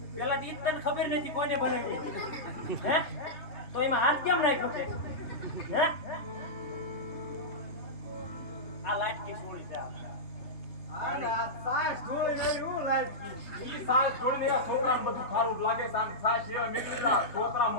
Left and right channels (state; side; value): late; right; 3.0 ms